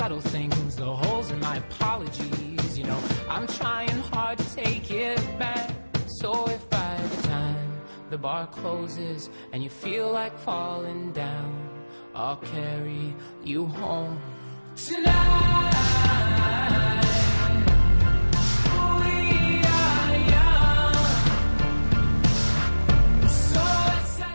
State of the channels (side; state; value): both; inverted; correlation -1.00